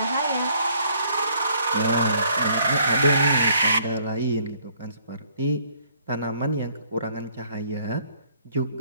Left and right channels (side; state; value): both; inverted; correlation -0.64